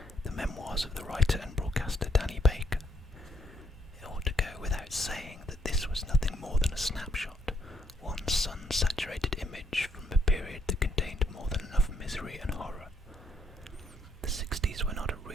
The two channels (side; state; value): both; normal; correlation 0.72